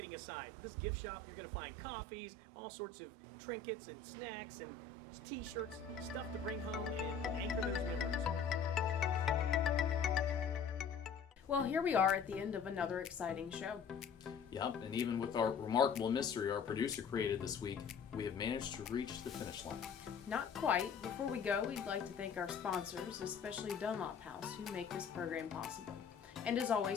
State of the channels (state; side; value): quieter; right; 5.8 dB